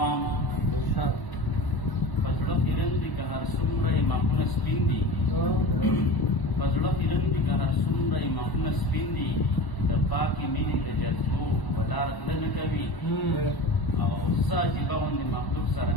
پزړه خیرن دي که هر څومره ماخونه سپین دي، پزړه خیرن دي که هر څومره ماخونه سپین دي، د پاکې مینې د جذبو ولاره تله نه کوي او څه عجیبه غوندې مخلوق سره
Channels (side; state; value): right; late; 1.0 ms